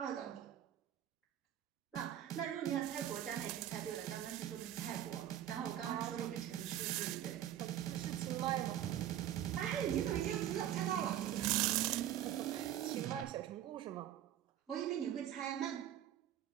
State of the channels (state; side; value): quieter; left; 11.5 dB